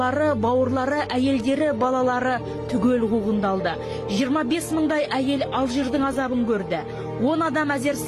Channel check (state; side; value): identical; both; correlation 1.00